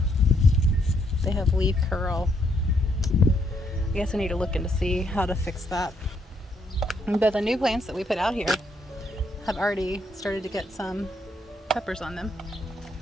They have leaf curl. I guess I need to look in to see how to fix that. But the new plants that we put out here have already started to get some peppers on them.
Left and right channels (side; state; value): both; normal; correlation 0.73